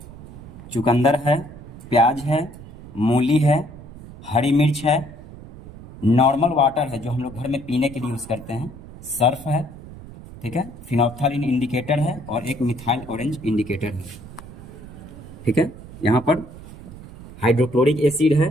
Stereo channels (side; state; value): right; noise; rumble, 16 dB below the sound